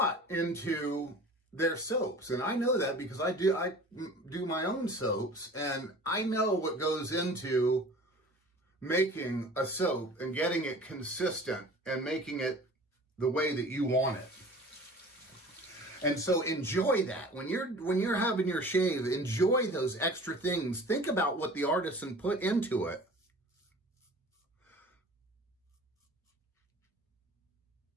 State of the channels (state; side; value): normal; both; correlation 0.43